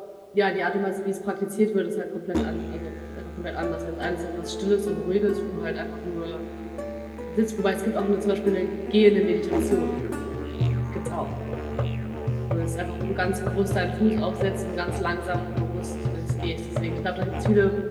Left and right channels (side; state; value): both; identical; correlation 1.00